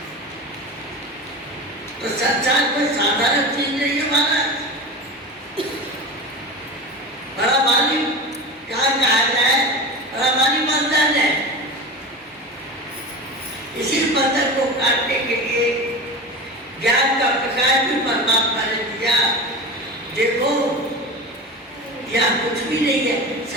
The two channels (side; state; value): both; normal; correlation 0.29